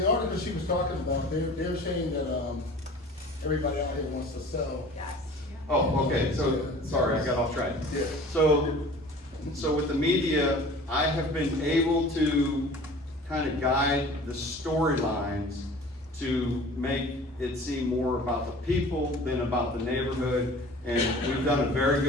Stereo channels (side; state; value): both; normal; correlation 0.44